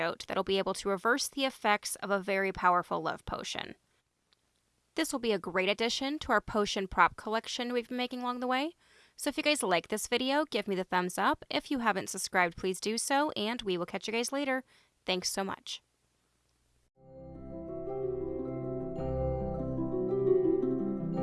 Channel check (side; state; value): both; identical; correlation 1.00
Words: that'll be able to reverse the effects of a very powerful love potion. This will be a great addition to our potion prop collection we've been making along the way. So if you guys like this video, give me the thumbs up. If you haven't subscribed, please do so, and we will catch you guys later. Thanks so much.